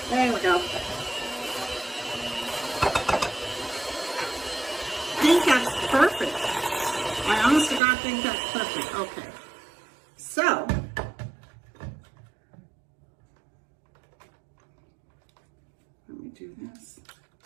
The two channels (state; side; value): drops out; left; at 7.8 s